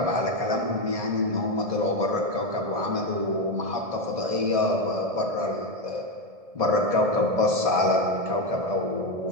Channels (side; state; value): left; late; 1.7 ms